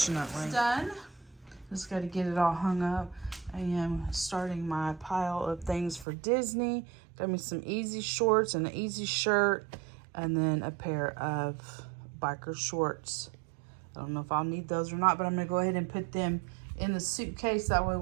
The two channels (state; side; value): drops out; left; at 6.1 s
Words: It's done. Just got to get it all hung up. I am starting my pile of things for Disney. Got me some easy shorts and an easy shirt, and then a pair of biker shorts. I don't know if I'll need those or not, but I'm gonna go ahead and put them in the suitcase. That way